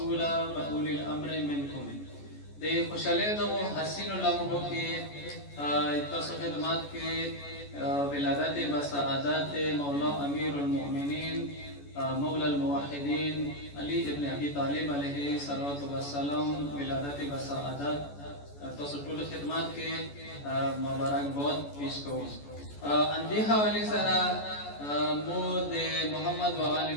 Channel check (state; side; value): late; right; 14 ms